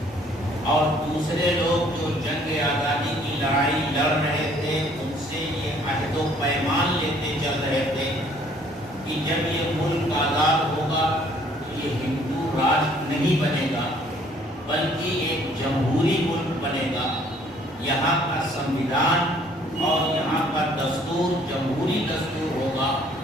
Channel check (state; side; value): normal; both; correlation 0.60